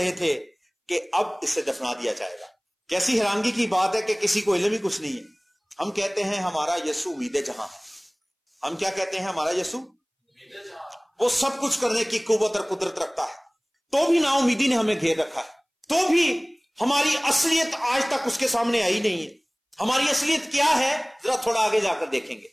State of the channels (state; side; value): identical; both; correlation 1.00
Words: थे कि अब इसे दफना दिया जाएगा। कैसी हैरानगी की बात है कि किसी को इल्म ही कुछ नहीं है। हम कहते हैं हमारा यीशु उम्मीद जहां है। हम क्या कहते हैं? हमारा यीशु वो सब कुछ करने की कुव्वत और कुदरत रखता है, तो भी ना उम्मीदी ने हमें घेर रखा है, तो भी हमारी असलियत आज तक उसके सामने आई नहीं है। हमारी असलियत क्या है, जरा थोड़ा आगे जाकर देखेंगे।